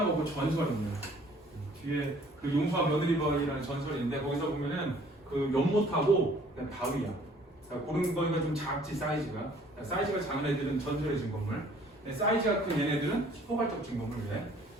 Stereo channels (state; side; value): normal; both; correlation 0.57